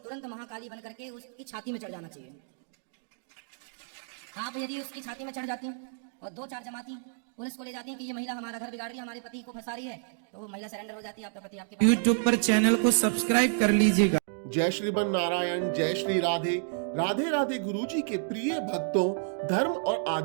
महाकाली बन करके उसकी छाती में चढ़ जाना चाहिए। आप यदि उसकी छाती में चढ़ जाती और दो चार जमाती पुलिस को ले जाती है कि ये महिला हमारा घर बिगाड़ रही है, हमारे पति को फंसा रही है, तो वो महिला सरेंडर हो जाती है, आपका पति आपके पास। YouTube पर चैनल को सब्सक्राइब कर लीजिएगा। जय श्रीमन नारायण, जय श्री राधे। राधे राधे गुरुजी के प्रिय भक्तों, धर्म और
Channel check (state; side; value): silent; left; digital silence